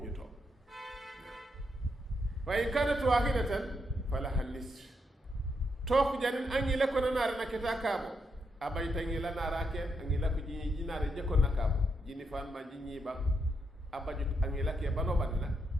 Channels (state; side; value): normal; both; correlation 0.81